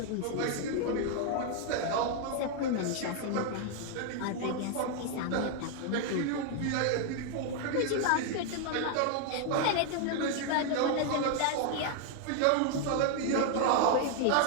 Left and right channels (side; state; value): both; different; correlation 0.00